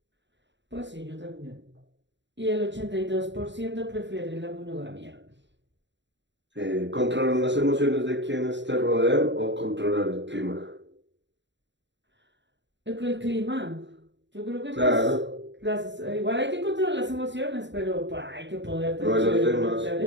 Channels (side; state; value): left; late; 0.52 ms